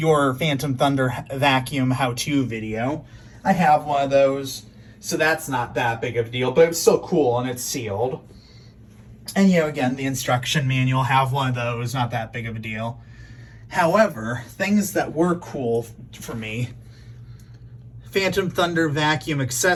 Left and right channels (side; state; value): both; identical; correlation 1.00